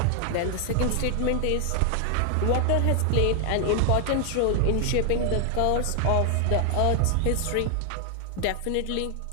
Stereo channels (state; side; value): different; both; correlation 0.00